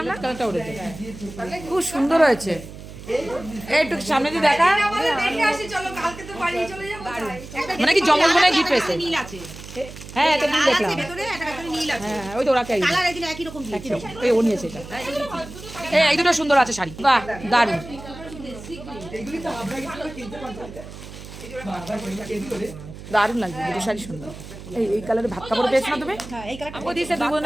না কালারটা উঠেছে, খুব সুন্দর হয়েছে। একটু সামনে দিয়ে দেখা, মানে কি জমল মনে গিফট পেয়েছে। হ্যাঁ এটা নীল দেখলাম, হ্যাঁ ওই তো ওরা কে এই ও নিয়েছে এটা। এই দুটো সুন্দর আছে শাড়ি, বাহ দারুন দারুণ লাগছে দুটো শাড়ি সুন্দর। এই কালারে ভাত কাপড় পেয়েছো না তুমি? ও দিয়েছে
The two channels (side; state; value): right; noise; hum, 14 dB below the sound